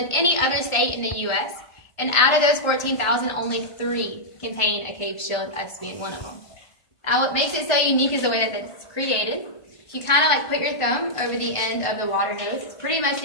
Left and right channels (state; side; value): late; right; 1.5 ms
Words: any other state in the U.S. And out of those 14,000, only 3 contain a cave shield, us being one of them. Now what makes it so unique is the way that it's created. If you kind of like put your thumb over the end of the water hose, it's pretty much